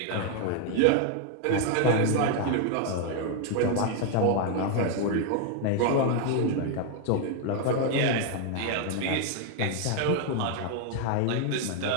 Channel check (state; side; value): different; both; correlation 0.00